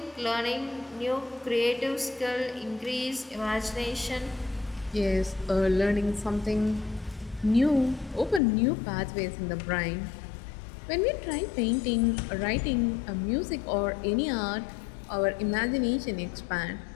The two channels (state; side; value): drops out; right; at 8.4 s